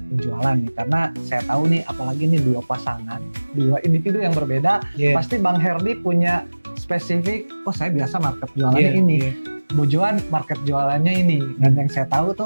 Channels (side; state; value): both; inverted; correlation -1.00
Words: penjualan nih, karena saya tahu nih apalagi nih dua pasangan, dua individu yang berbeda. Pasti Bang Herdi punya spesifik, saya biasa market jualannya ini. Bu Joan market jualannya ini, dan yang saya tahu